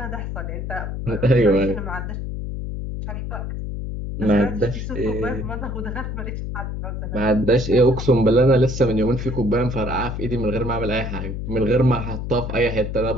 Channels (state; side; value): noise; left; hum, 5 dB below the sound